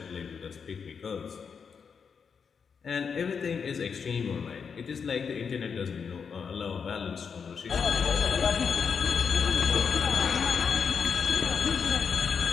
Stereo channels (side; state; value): right; quieter; 6.2 dB